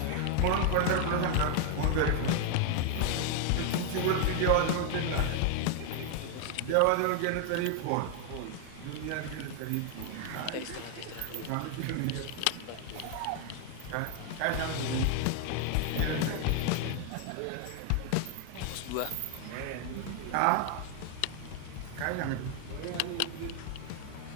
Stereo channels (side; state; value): both; different; correlation 0.00